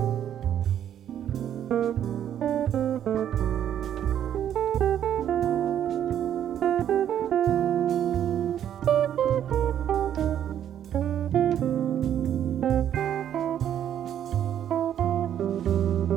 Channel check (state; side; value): quieter; left; 10.2 dB